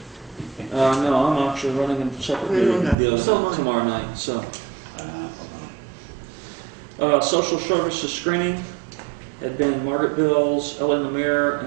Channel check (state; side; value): drops out; left; at 3.0 s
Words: No, I'm actually running a separate Okay, meeting well, the other so night, am I. tomorrow night, so. Social services screening had been Margaret Bills, Ellen Lemire,